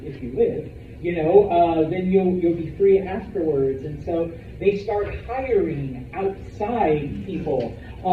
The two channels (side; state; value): both; identical; correlation 1.00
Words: if you live, then you'll be free afterwards. And so they start hiring outside people.